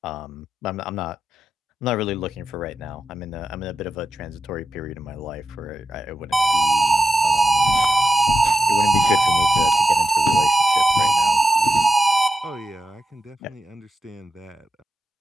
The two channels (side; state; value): both; normal; correlation 0.89